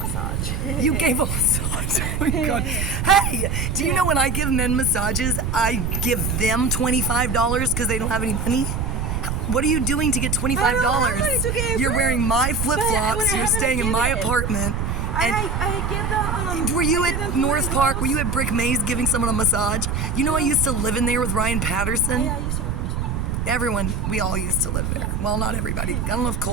massage. You gave a massage. Oh my God. Hey, do you know when I give men massages, I give them $25 because they don't have any money? What are you doing to get $25? You're wearing my flip-flops. You're staying in my apartment. And I give the were you at North Park? Were you at Brick Maze giving someone a massage? You know I used to live in there with Ryan Patterson. Yeah, I used to. Everyone, we all used to live there. Well, not everybody. I don't know if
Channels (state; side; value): noise; right; rumble, 1 dB below the sound